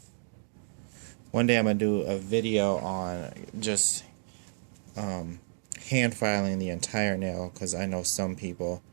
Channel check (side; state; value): left; silent; digital silence